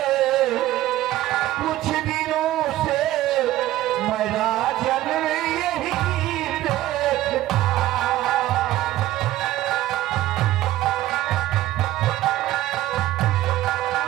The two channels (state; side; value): quieter; left; 15.1 dB